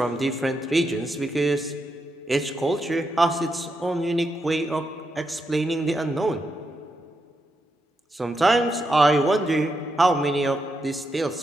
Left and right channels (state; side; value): normal; both; correlation 0.83